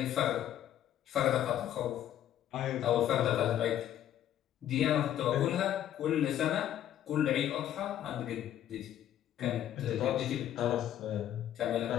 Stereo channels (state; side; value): quieter; right; 11.3 dB